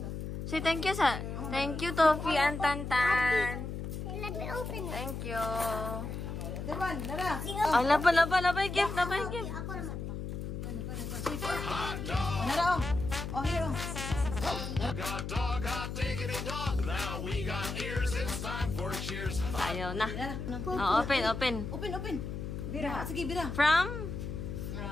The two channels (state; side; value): noise; left; hum, 5 dB below the sound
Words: Say thank you sa. Thank you, Tofi and Tantan. Let me open it. Thank you. Dewan, nara. Ay, labay gift, labay gift. Ako naman. Nara oh. Oh, here oh. Got dog, hot diggity dog. Now we got ears. It's time for cheers. Ayaw na. Nara. Oh, open. Open. Bira. Sige, bira. From?